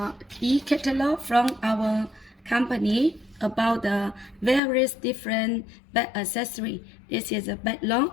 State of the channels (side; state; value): right; drops out; at 4.6 s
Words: e-catalog from our company about the various different bag accessory. This is a bag